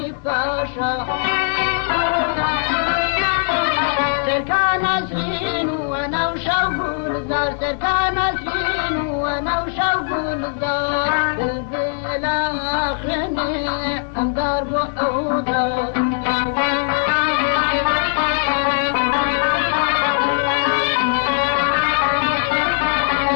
فاشا سركان سين وانا وشوق الزار سركان سين وانا وشوق الزار البلا خيني اندار بحوضة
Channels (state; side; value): silent; right; digital silence